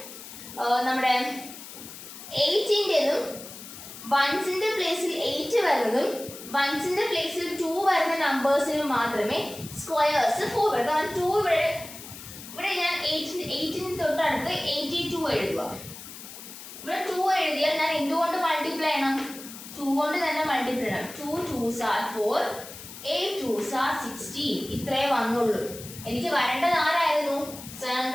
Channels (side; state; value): left; noise; hiss, 14 dB below the sound